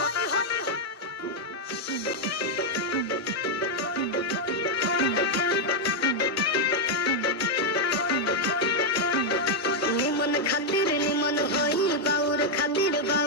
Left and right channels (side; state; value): both; normal; correlation 0.00